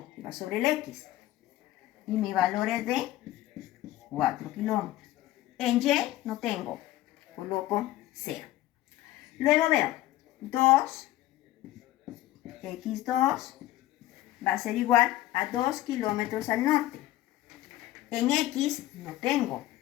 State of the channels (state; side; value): quieter; right; 15.4 dB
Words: va sobre el X. Y mi valor es de 4 kilómetros. En Y no tengo, coloco 0. Luego veo 2, X2 va a ser igual a 2 kilómetros al norte. En X no tengo,